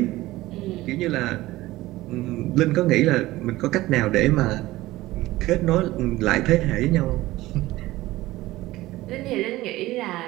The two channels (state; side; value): quieter; left; 17.6 dB